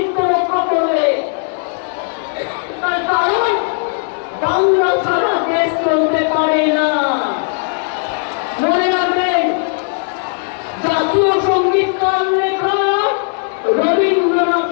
রক্ষা করবে। তার কারণ বাংলা ছাড়া দেশ চলতে পারে না। মনে রাখবেন, জাতীয় সঙ্গীত কার লেখা? রবীন্দ্রনাথ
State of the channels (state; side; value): silent; right; 56 dB below the other